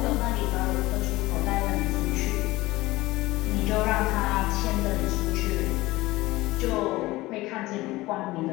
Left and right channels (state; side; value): quieter; right; 19.3 dB